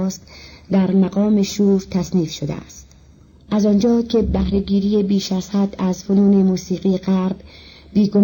در مقام شور تصنیف شده است. از آنجا که بهره‌گیری بیش از حد از فنون موسیقی غرب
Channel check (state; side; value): identical; both; correlation 1.00